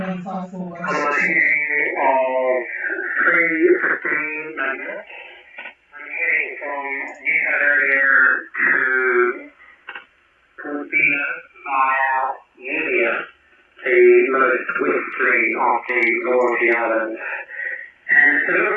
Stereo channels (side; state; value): both; identical; correlation 1.00